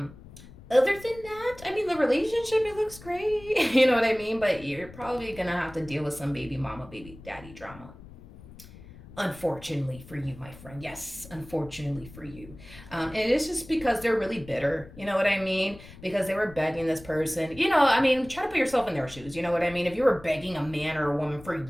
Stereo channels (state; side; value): noise; left; rumble, 19 dB below the sound